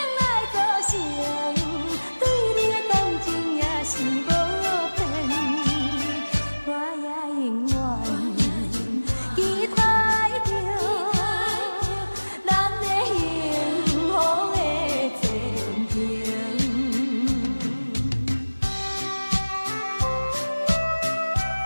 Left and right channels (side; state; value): both; inverted; correlation -1.00